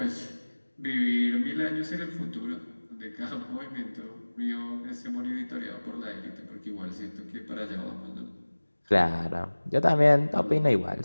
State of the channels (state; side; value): inverted; both; correlation -1.00